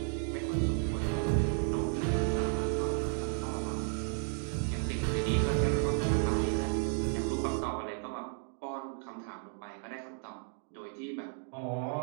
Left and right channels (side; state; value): left; silent; 55 dB below the other